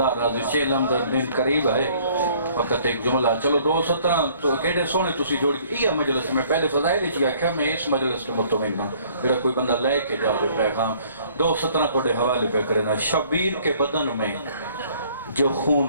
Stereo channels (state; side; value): inverted; both; correlation -0.58